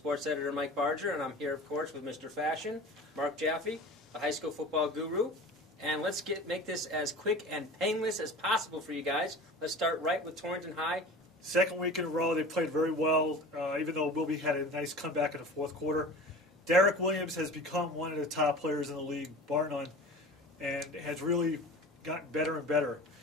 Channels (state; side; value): normal; both; correlation 0.37